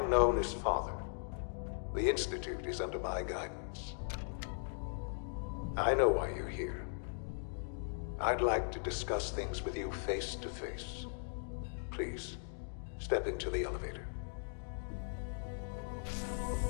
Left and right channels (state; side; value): silent; right; digital silence